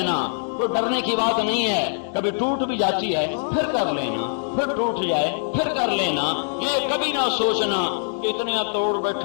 کوئی ڈرنے کی بات نہیں ہے، کبھی ٹوٹ بھی جاتی ہے پھر کر لینا، پھر ٹوٹ جائے پھر کر لینا۔ یہ کبھی نہ سوچنا کہ اتنا توڑ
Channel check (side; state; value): right; silent; digital silence